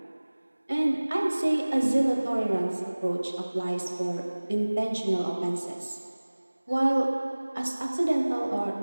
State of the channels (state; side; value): inverted; both; correlation -1.00